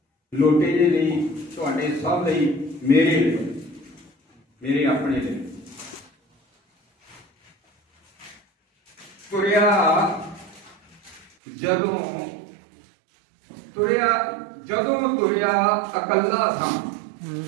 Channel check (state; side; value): drops out; left; at 11.3 s